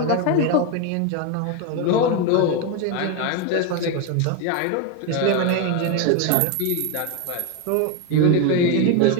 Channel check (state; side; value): different; both; correlation 0.02